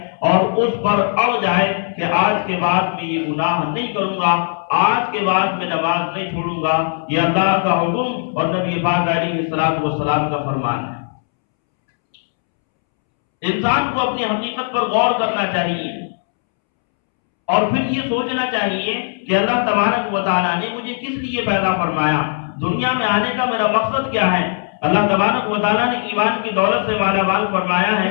اور اس پر اڑ جائے کہ آج کے بعد میں یہ گناہ نہیں کروں گا، آج کے بعد میں نماز نہیں چھوڑوں گا، یہ اللہ کا حکم اور نبی پاک علیہ الصلوۃ والسلام کا فرمان ہے۔ انسان کو اپنی حقیقت پر غور کرنا چاہیے اور پھر یہ سوچنا چاہیے کہ اللہ تبارک و تعالیٰ نے مجھے کس لیے پیدا فرمایا، دنیا میں آنے کا میرا مقصد کیا ہے۔ اللہ تبارک و تعالیٰ نے ایمان کی دولت سے مالا مال فرمایا ہے،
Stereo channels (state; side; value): silent; right; 67 dB below the other